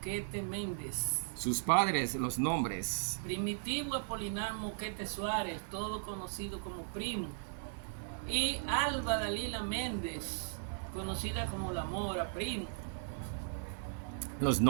Méndez. Sus padres, los nombres. Primitivo Apolinar Moquete Suárez, todo conocido como Primo. Y Alba Dalila Méndez, conocida como La Mora, Primo. Los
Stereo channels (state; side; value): silent; left; digital silence